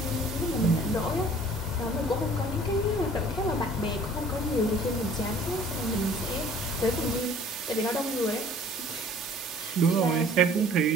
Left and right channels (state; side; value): normal; both; correlation 0.52